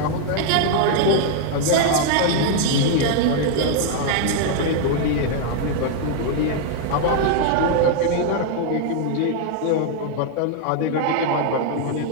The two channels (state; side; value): different; both; correlation 0.00